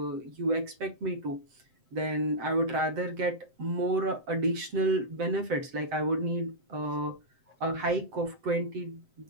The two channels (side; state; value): left; late; 7.7 ms